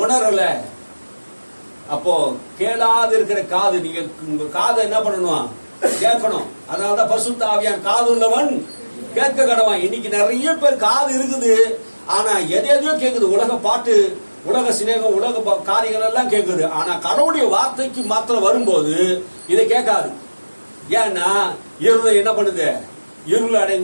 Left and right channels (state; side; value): inverted; both; correlation -1.00